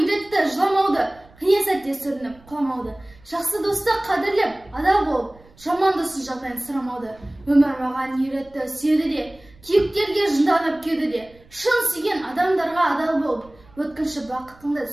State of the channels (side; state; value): right; noise; rumble, 26 dB below the sound